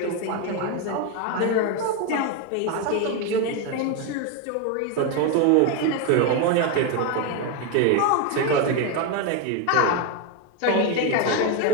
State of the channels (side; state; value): both; different; correlation 0.02